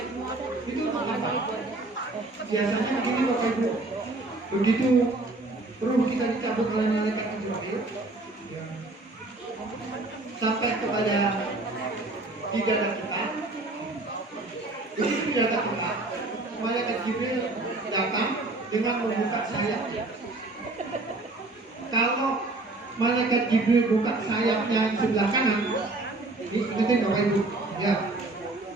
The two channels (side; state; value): left; quieter; 3.0 dB